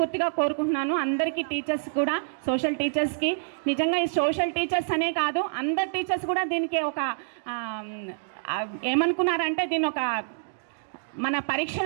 కోరుకుంటున్నాను. అందరికీ టీచర్స్ కూడా, సోషల్ టీచర్స్కి నిజంగా ఈ సోషల్ టీచర్స్ అనే కాదు, అందరు టీచర్స్ కూడా దీనికి ఒక ఏమనుకున్నారంటే దీన్ని ఒక మన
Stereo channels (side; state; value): left; silent; digital silence